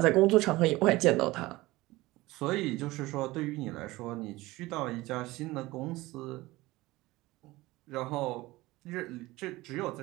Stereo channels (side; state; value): left; quieter; 19.5 dB